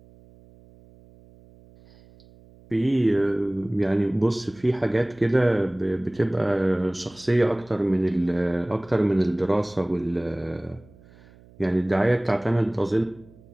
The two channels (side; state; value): right; noise; hum, 25 dB below the sound